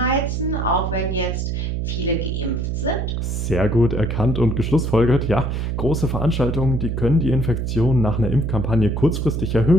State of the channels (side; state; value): right; noise; hum, 1 dB below the sound